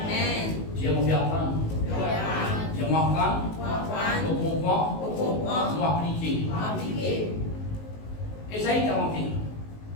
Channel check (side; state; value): right; late; 19 ms